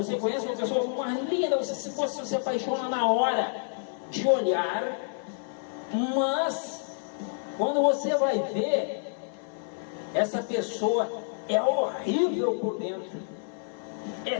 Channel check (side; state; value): right; silent; digital silence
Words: conhece uma pessoa mais linda, você se apaixona na hora de olhar, mas quando você vai ver, essa pessoa é horrível por dentro,